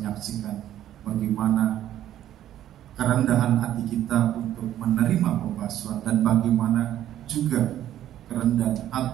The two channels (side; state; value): left; quieter; 12.0 dB